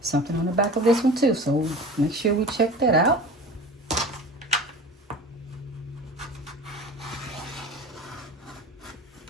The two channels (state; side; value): normal; both; correlation 0.37